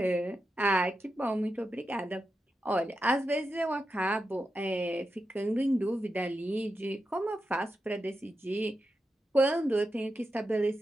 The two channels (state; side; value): normal; both; correlation 0.88